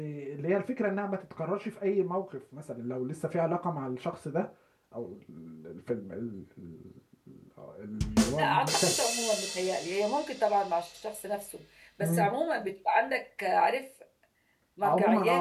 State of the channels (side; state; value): both; identical; correlation 1.00